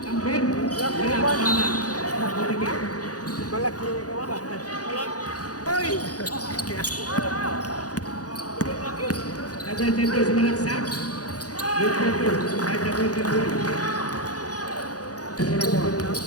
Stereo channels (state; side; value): late; right; 0.68 ms